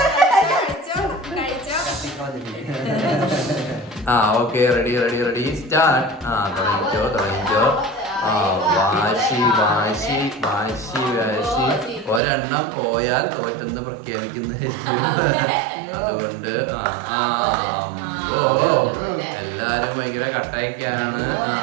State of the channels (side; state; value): left; drops out; at 12.2 s